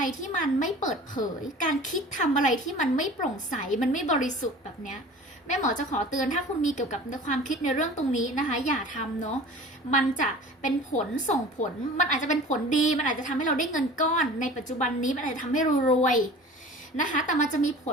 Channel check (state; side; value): normal; both; correlation 0.42